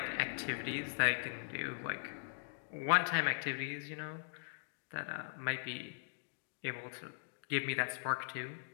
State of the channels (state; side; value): silent; right; digital silence